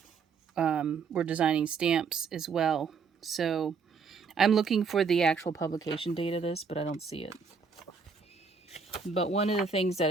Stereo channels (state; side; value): quieter; left; 5.4 dB